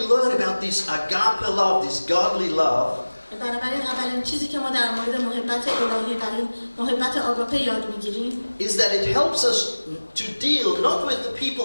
about this agape love, this godly love, بنابراین اولین چیزی که ما در مورد محبت الهی و این محبت آگاپه یاد میگیریم is that it helps us to deal not with the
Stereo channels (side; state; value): both; inverted; correlation -1.00